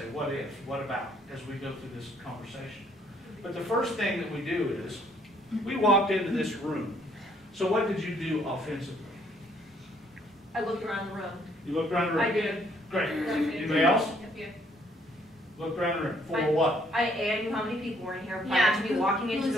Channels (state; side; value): normal; both; correlation 0.66